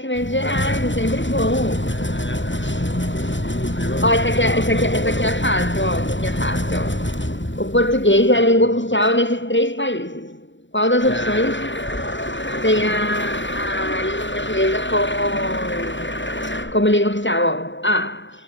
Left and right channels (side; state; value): right; late; 0.54 ms